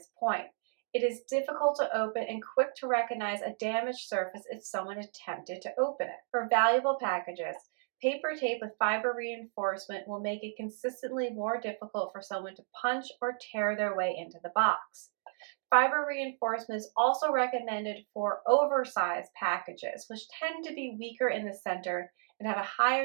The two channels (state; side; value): silent; left; digital silence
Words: point. It is difficult to open and quick to recognize a damaged surface if someone attempted to open it. For valuable packages, paper tape with fiber reinforcement will make it consistently more difficult for someone to punch or tear their way into the box. Fiber reinforcement is also recommended for oversized packages, which tend to be weaker in the center and have a